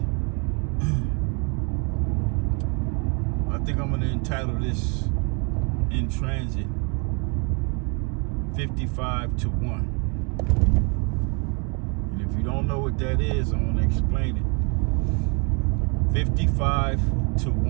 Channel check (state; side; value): quieter; left; 34.6 dB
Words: I think I'm going to entitle this In Transit 55 to 1. And if you don't know what that is, I'm going to explain it. 55 to